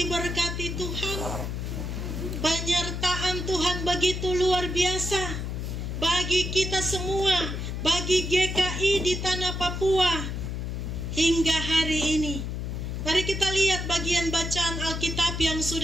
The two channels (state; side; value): noise; left; hum, 4 dB below the sound